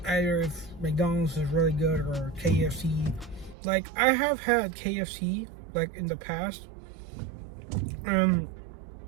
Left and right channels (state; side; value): drops out; left; at 3.6 s